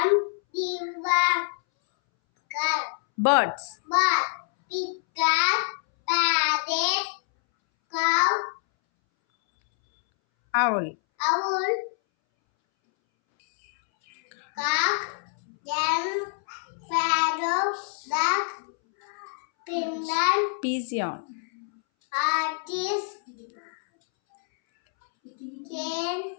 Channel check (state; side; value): silent; right; 61 dB below the other